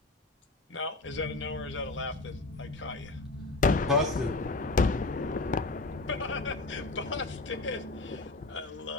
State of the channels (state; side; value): quieter; right; 3.2 dB